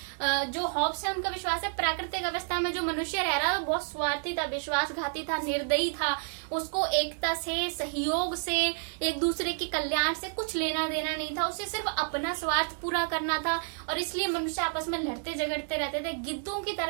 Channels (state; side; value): silent; left; 58 dB below the other